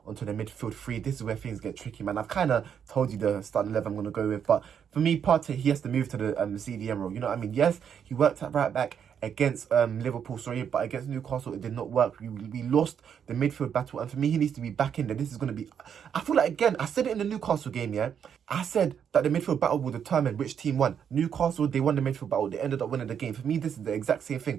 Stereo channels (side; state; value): left; quieter; 8.0 dB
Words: onto the midfield three. This is where things get tricky, man. I've kind of told you the starting 11 I'm going to go with. But for me, Partey, he has to move to the CDM role. You know what I mean? Yes, he worked at right back against Liverpool, but against Newcastle, it did not work. We lost the midfield battle. And for me, he needs to be back in there. This is going to be... I feel like, again, I said it in the Newcastle game, yeah? I said that the midfield battle will determine which team won. Newcastle, they won the midfield battle. They ended up winning the game. For me, this is the exact same